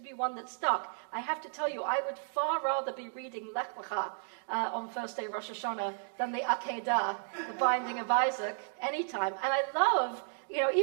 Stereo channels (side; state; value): left; silent; digital silence